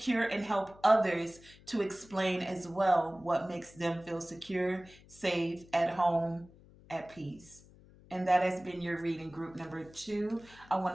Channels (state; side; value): noise; left; hum, 24 dB below the sound